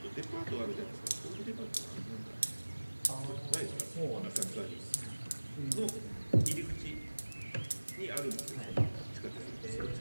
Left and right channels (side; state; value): both; inverted; correlation -1.00